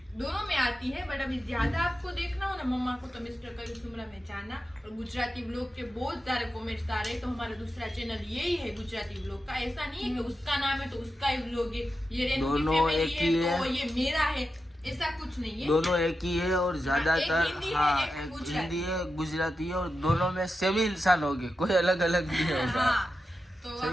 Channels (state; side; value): normal; both; correlation 0.90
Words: दोनों में आती है, बट अभी ज्यादा आपको देखना हो ना मम्मा को तो मिस्टर कयूम सुमरा में जाना। और गुजराती व्लॉग के बहुत सारे कमेंट्स आ रहे हैं, तो हमारा दूसरा चैनल यही है गुजराती व्लॉग का। ऐसा नहीं है कि उसका नाम है तो उसका ही व्लॉग है, ये रेनू की दोनों फैमिली एक ही है तो है। ये मेरा है, ऐसा कुछ नहीं है। दोनों एक ही है और ज्यादातर एक हिंदी है, हाँ एक एक गुजराती। हिंदी है गुजराती है, और दोनों में सेम ही इंसान हो गए, कोई अलग अलग नहीं होगा। हाँ तो आप